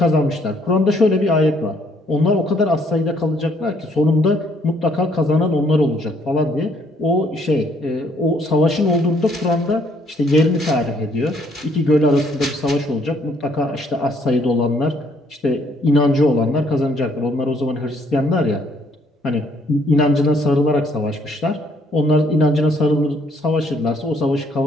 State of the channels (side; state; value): both; normal; correlation 0.66